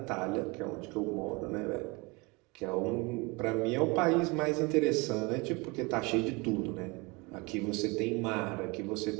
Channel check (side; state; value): left; quieter; 26.9 dB